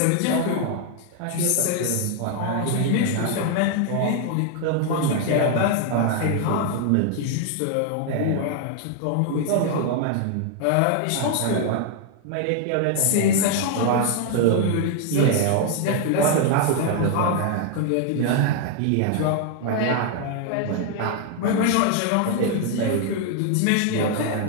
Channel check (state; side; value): different; both; correlation 0.00